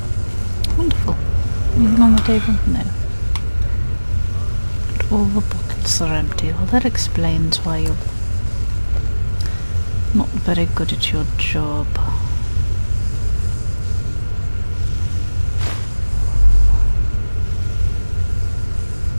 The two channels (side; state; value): both; inverted; correlation -1.00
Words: Wonderful. Anything on the table? No. But all the buckets are empty. Well, that explains why you're not very good at your job.